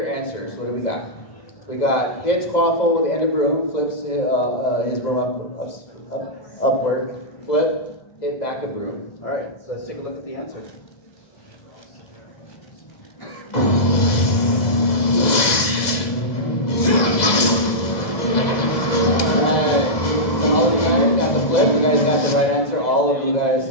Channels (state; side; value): late; right; 2.0 ms